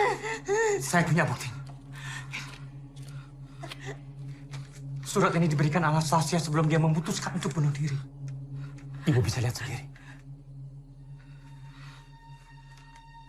Saya punya bukti. Surat ini diberikan Anastasia sebelum dia memutuskan untuk bunuh diri. Ibu bisa lihat sendiri.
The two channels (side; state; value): both; identical; correlation 1.00